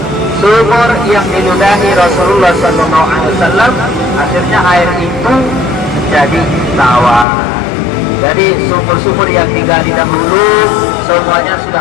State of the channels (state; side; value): drops out; right; at 7.2 s